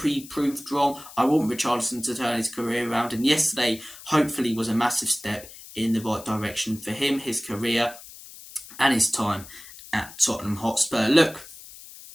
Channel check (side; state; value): left; noise; hiss, 17 dB below the sound